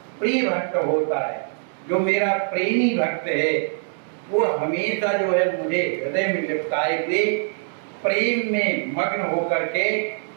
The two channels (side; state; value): left; silent; 63 dB below the other